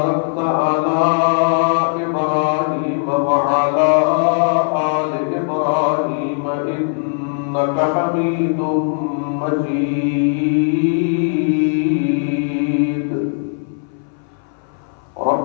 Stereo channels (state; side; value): silent; right; 62 dB below the other